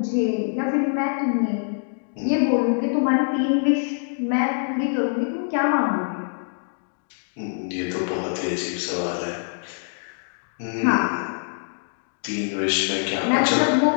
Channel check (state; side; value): silent; right; 62 dB below the other